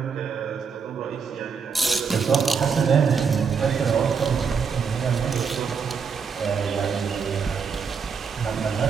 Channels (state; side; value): quieter; left; 6.0 dB